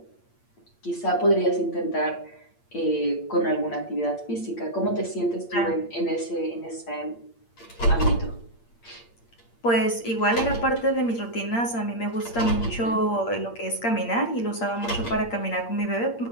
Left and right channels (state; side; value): late; right; 8.6 ms